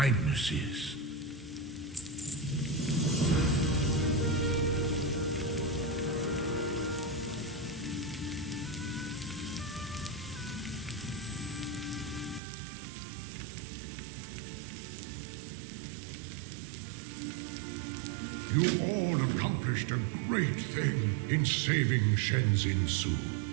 You all accomplished a great thing in saving Shenzin Su.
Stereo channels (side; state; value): left; drops out; at 12.4 s